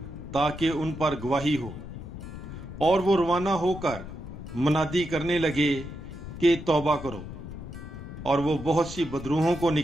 ताकि उन पर गवाही हो। और वो रवाना होकर मुनादी करने लगे कि तौबा करो। और वो बहुत सी बदरूहों को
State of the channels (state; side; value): noise; left; rumble, 11 dB below the sound